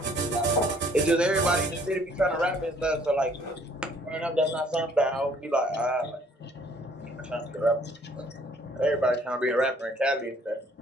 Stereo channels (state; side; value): normal; both; correlation 0.60